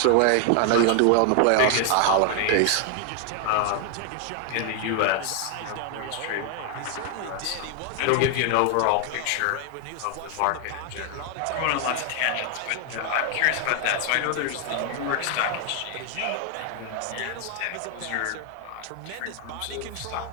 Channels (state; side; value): different; both; correlation 0.00